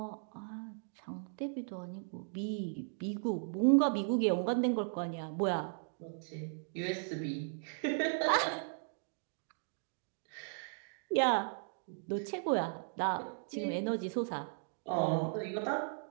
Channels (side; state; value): left; silent; digital silence